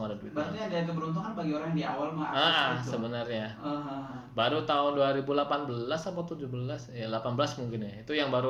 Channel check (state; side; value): identical; both; correlation 1.00